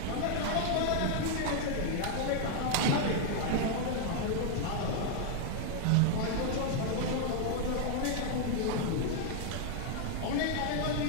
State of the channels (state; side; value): different; both; correlation 0.00